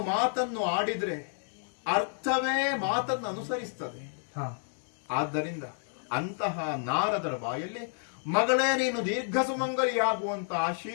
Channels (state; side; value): silent; right; 58 dB below the other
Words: ಮಾತನ್ನು ಆಡಿದ್ರೆ ಅರ್ಥವೇ ಮಾತನ್ನು ಅನುಸರಿಸ್ತದೆ. ಹಾ ಆದ್ದರಿಂದ ಅಂತಹ ನಾರದರ ಬಾಯಲ್ಲಿ ಮಗಳೇ ನೀನು ದೀರ್ಘ ಸುಮಂಗಲಿಯಾಗುವಂತ